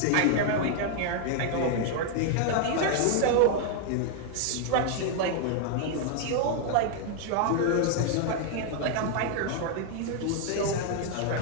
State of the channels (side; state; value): both; different; correlation 0.00